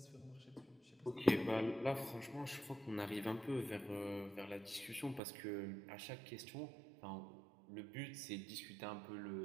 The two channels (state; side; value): drops out; left; at 5.2 s